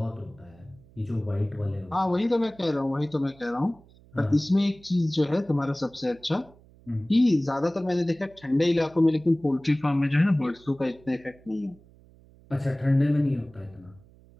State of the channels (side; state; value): right; noise; hum, 26 dB below the sound